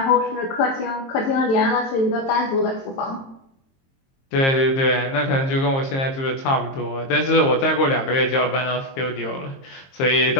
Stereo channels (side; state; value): right; late; 22 ms